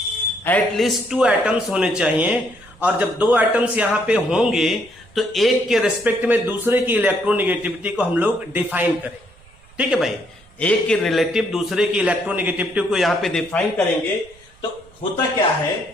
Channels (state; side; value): noise; right; rumble, 27 dB below the sound